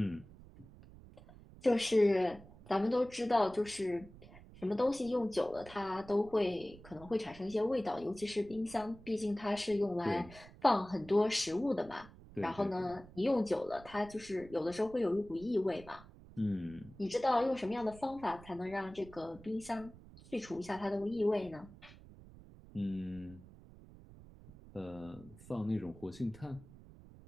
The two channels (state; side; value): noise; right; rumble, 19 dB below the sound